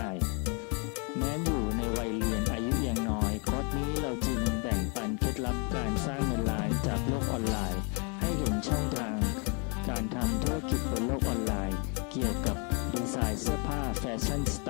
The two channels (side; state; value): right; quieter; 35.1 dB